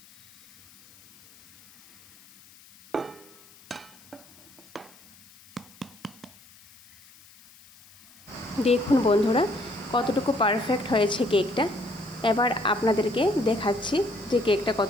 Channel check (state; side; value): noise; left; hiss, 25 dB below the sound